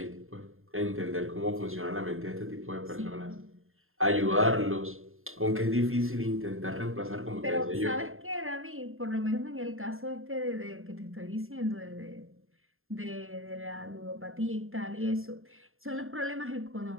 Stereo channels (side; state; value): left; late; 0.61 ms